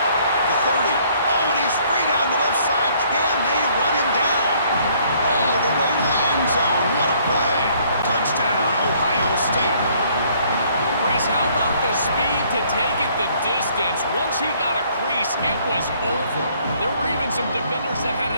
30. Oh, and he's free down the left side. Can they run him down? All the way to the end zone. What a play. Touchdown, Ohio State. Chris, how about the speed to take it the distance? Once he got a crease, it was over. There were even some defenders that had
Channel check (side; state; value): both; inverted; correlation -0.63